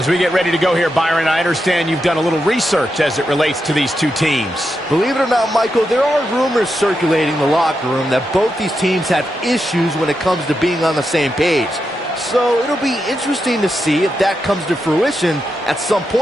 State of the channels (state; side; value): normal; both; correlation 0.86